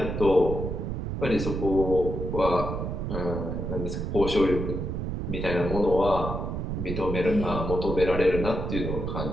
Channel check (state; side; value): noise; right; rumble, 3 dB below the sound